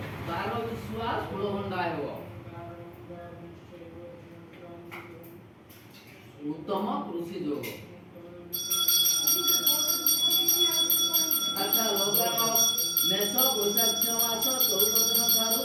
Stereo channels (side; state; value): both; identical; correlation 1.00